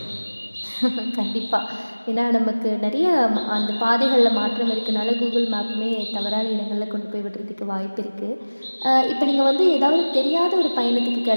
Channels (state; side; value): inverted; both; correlation -1.00